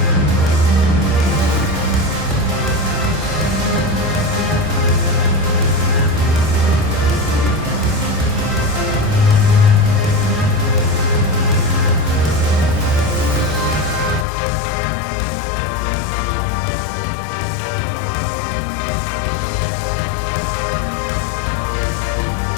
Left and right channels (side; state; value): right; drops out; at 14.2 s